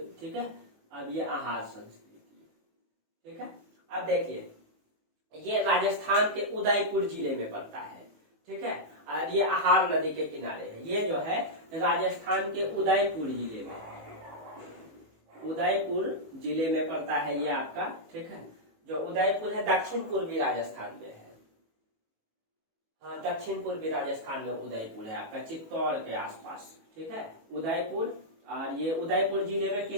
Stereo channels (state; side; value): late; left; 18 ms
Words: ठीक है, अब ये आहार संस्कृति, ठीक है। अब देखिए ये राजस्थान के उदयपुर जिले में पड़ता है, ठीक है, और ये आहार नदी के किनारे है। ये जो है राजस्थान के उदयपुर जिले में है, उदयपुर जिले में पड़ता है ये आपका, ठीक है। जो उदयपुर है दक्षिण पूर्वी राजस्थान में है, हाँ, दक्षिण पूर्वी राजस्थान में उदयपुर है आपका, चित्तौड़ के आसपास, ठीक है, उदयपुर। और ये उदयपुर जिले में